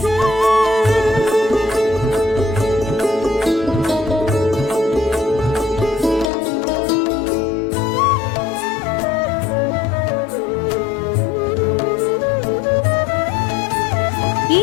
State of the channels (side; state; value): right; drops out; at 6.3 s